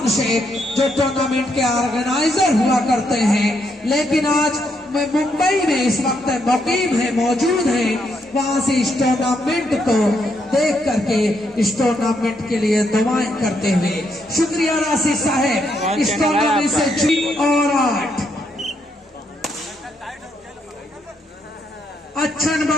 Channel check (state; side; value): normal; both; correlation 0.77